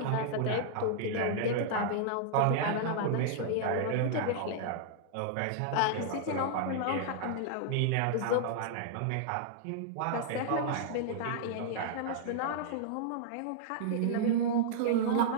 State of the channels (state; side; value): different; both; correlation -0.01